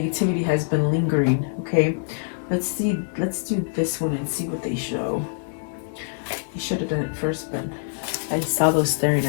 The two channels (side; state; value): right; silent; 62 dB below the other